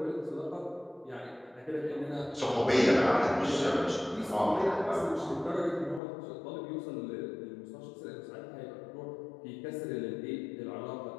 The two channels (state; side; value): drops out; right; at 6.0 s